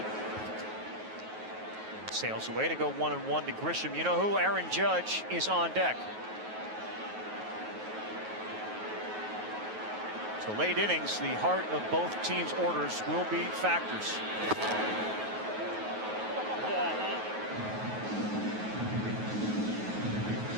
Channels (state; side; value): late; left; 9.3 ms